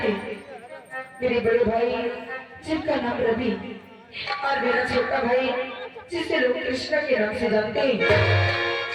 थे, मेरे बड़े भाई जिनका नाम रवि और मेरा छोटा भाई जिसे लोग कृष्णा के नाम से जानते हैं।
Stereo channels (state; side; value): identical; both; correlation 1.00